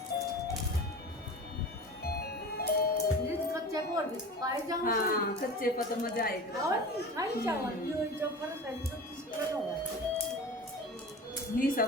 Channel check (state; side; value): normal; both; correlation 0.34